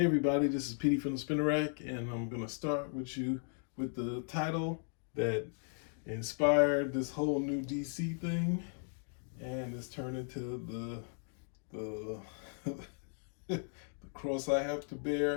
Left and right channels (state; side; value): silent; right; 53 dB below the other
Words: everybody, this is Petey from the Spinner Rack, and I'm gonna start with you with the title that inspired this whole new DC thing, and it's turned into the the cross I have to